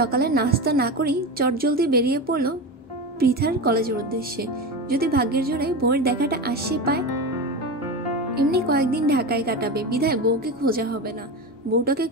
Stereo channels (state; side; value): normal; both; correlation 0.22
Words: নাস্তা না করেই চটজলদি বেরিয়ে পড়লো পৃথার কলেজের উদ্দেশ্যে। যদি ভাগ্যের জোরে বউয়ের দেখাটা আসে পায়। এমনি কয়েকদিন ঢাকায় কাটাবে, বিধায় বউকে খোঁজা হবে না। বউটাকে